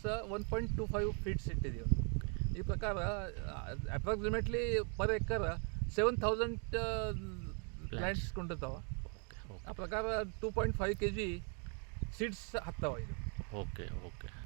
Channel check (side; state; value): left; quieter; 39.2 dB